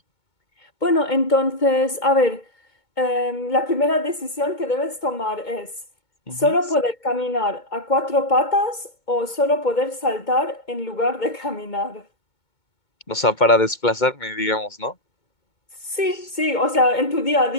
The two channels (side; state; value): right; late; 2.2 ms